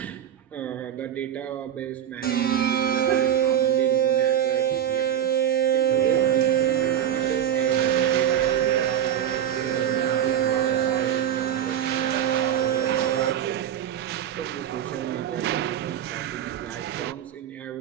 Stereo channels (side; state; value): left; quieter; 10.3 dB